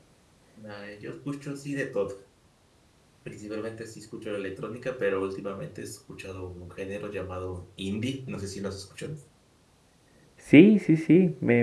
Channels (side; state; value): both; identical; correlation 1.00